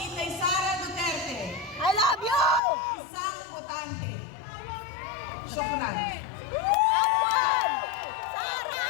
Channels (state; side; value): drops out; right; at 2.6 s